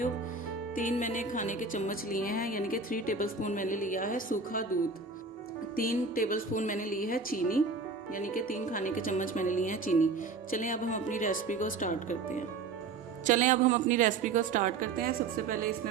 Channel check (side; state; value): left; quieter; 4.4 dB